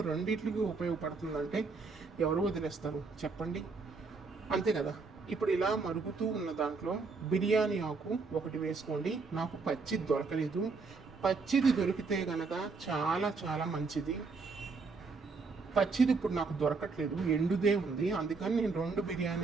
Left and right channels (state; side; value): quieter; left; 4.4 dB